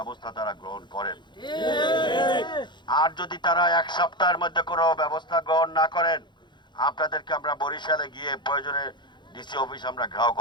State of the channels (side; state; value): right; late; 0.22 ms